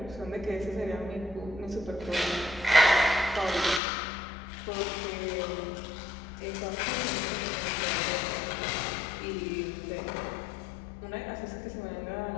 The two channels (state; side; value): drops out; right; at 3.8 s